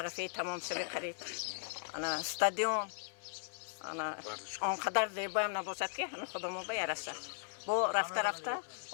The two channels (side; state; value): right; silent; 53 dB below the other